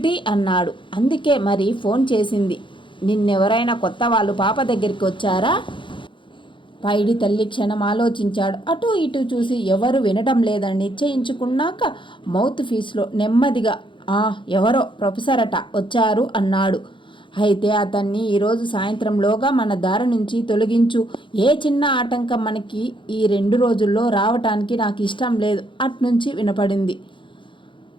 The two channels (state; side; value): late; right; 0.24 ms